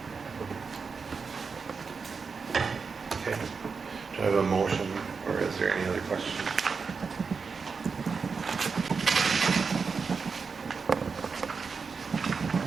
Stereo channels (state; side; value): quieter; left; 5.2 dB